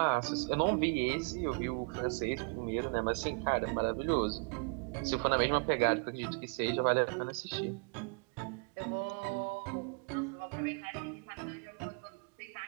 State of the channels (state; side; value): quieter; left; 38.0 dB